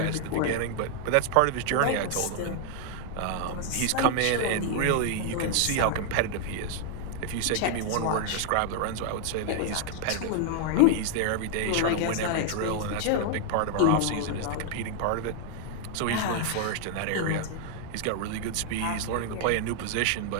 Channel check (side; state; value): both; different; correlation 0.00